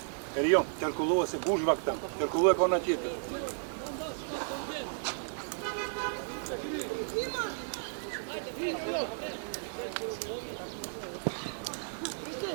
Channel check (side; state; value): left; silent; digital silence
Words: Erion, Terkulova se gužvak tam, Terkulova kao na tjepe.